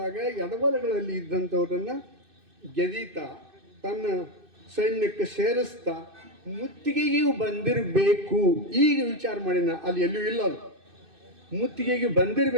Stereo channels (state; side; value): late; left; 2.6 ms